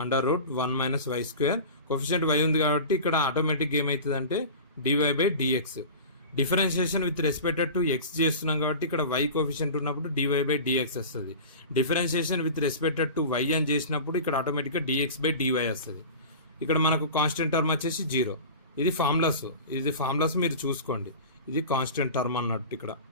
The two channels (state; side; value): inverted; both; correlation -0.34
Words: under root 1 minus why square coefficient Y ఉంది కాబట్టి ఇక్కడ ఆటోమేటిక్ ఏమవుతుంది అంటే D Y by D X. Differentiation with respected to X చేస్తున్నాం కాబట్టి ఇక్కడ వై కోఫిషియంట్ ఉన్నప్పుడు డివై బై డిఎక్స్ వస్తుంది. Differentiation with respected to Y అని చేసినప్పుడు ఇక్కడ ఆటోమేటిక్గా డిఎక్స్ బై డివై వస్తుంది. ఇక్కడ మనకు కాన్స్టెంట్ టర్మ్ వచ్చేసి 0. ఇది ఫార్ములాస్ మీరు చూసుకోండి. ఇది కాన్స్టెంట్ టర్మ్ అన్నట్టు.